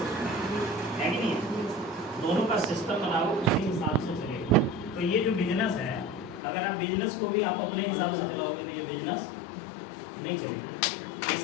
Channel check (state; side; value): drops out; right; at 6.4 s